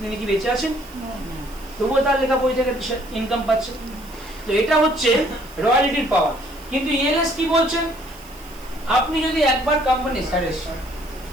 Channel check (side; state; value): right; noise; hiss, 22 dB below the sound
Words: তিনি কি বেঁচে আছেন? তবুও তার লেখা বই থেকে ইনকাম পাচ্ছে। তো এটা হচ্ছে রয়্যালিটির পাওয়ার। কিন্তু ইএলএস কি বলছেন? আপনি যদি একবার কোম্পানি